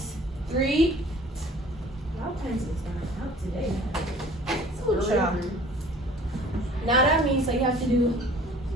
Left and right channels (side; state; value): both; normal; correlation 0.50